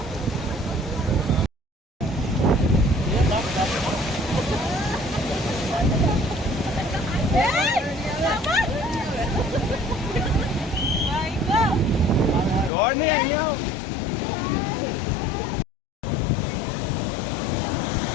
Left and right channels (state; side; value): drops out; right; at 12.7 s